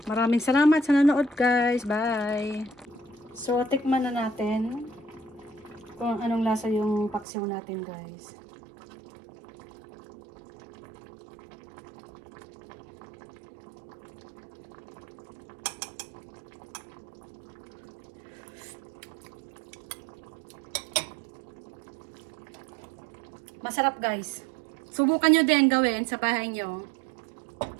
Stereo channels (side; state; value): left; drops out; at 7.2 s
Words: Maraming salamat sa nanood, guys. Bye! So, tikman na natin kung anong lasa yung paksiw natin, guys. Masarap guys. Subukan nyo din gawin sa bahay nyo.